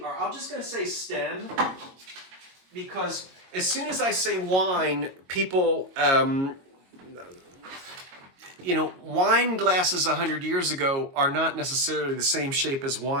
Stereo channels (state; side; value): late; left; 22 ms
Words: or I'm just going to say stem, because as soon as I say wine, people, wine glasses 100 years ago are not necessarily the same shape as